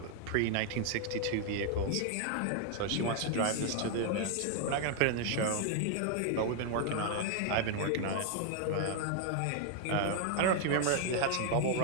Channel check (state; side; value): different; both; correlation 0.00